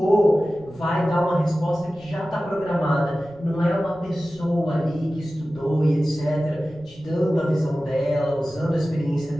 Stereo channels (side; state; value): right; noise; rumble, 24 dB below the sound